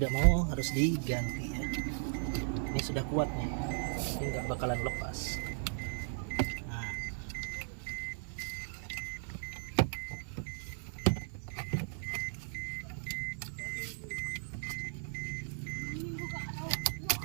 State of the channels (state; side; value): silent; left; 53 dB below the other